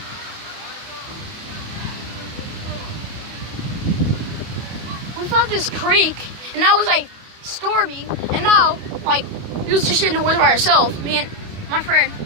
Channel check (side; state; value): left; late; 28 ms